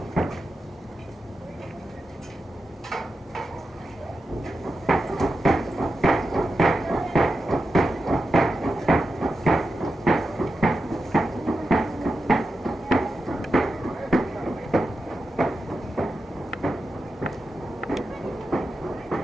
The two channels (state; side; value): normal; both; correlation 0.90